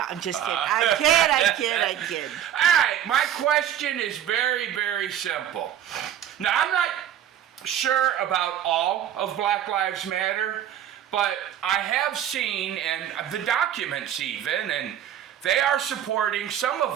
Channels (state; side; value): quieter; left; 10.5 dB